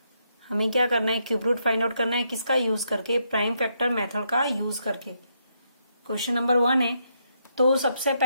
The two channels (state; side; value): inverted; both; correlation -0.78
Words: हमें क्या करना है, क्यूब रूट फाइंड आउट करना है। किसका यूज करके? प्राइम फैक्टर मेथड का यूज करके। क्वेश्चन नंबर 1 है, तो सबसे